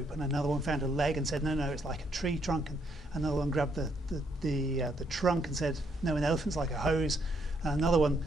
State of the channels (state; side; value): normal; both; correlation 0.73